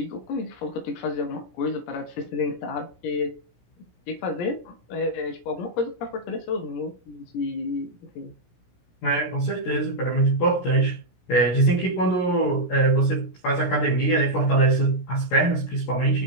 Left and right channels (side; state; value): right; late; 17 ms